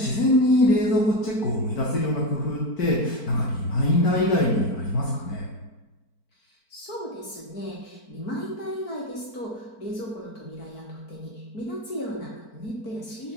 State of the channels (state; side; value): late; right; 4.5 ms